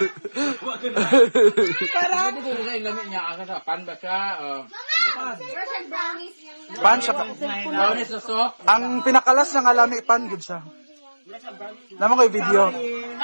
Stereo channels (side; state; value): both; inverted; correlation -1.00